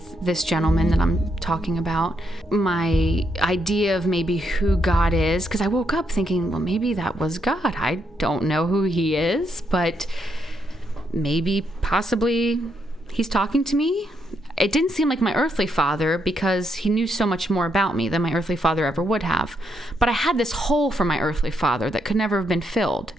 this gentleman that I'm talking about. My idea of maybe who God is, because I woke up thinking, well, maybe that was God. I don't know who he is, but maybe, possibly, he's talking to me. It didn't seem like my earthly father because he knew so much more about me than my earthly father ever would have. But I had this hole for my earthly father that could never have been filled.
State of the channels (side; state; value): both; normal; correlation 0.78